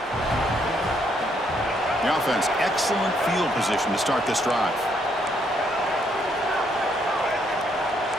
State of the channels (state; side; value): normal; both; correlation 0.72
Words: the offense, excellent field position to start this drive.